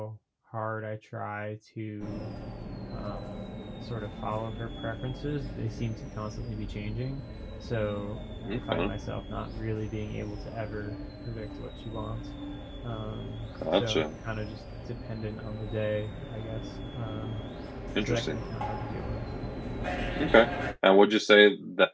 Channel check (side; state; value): both; identical; correlation 1.00